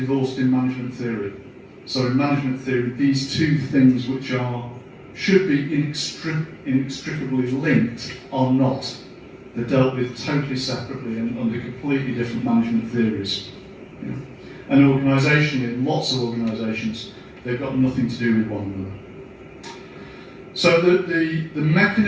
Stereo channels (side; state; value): both; identical; correlation 1.00